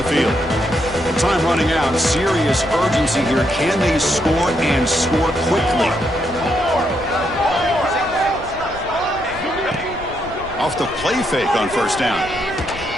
field. Time running out. Serious urgency here. Can they score and score quickly? Off the play fake on first down.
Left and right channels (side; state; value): left; noise; rumble, 16 dB below the sound